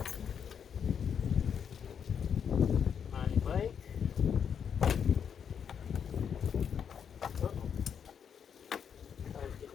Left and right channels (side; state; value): right; quieter; 7.6 dB